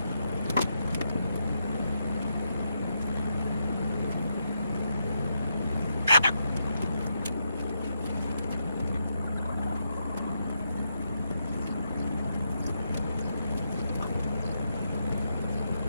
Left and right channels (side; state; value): both; inverted; correlation -0.82